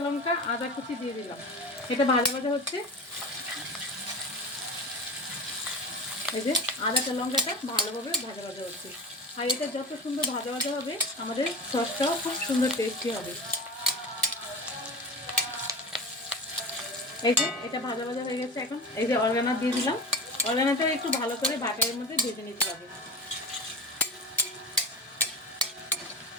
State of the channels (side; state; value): both; normal; correlation 0.30